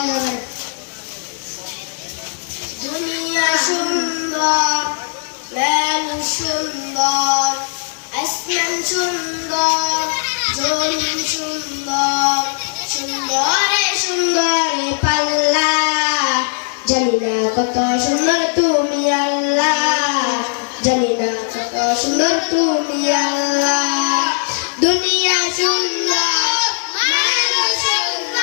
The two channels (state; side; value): silent; right; 61 dB below the other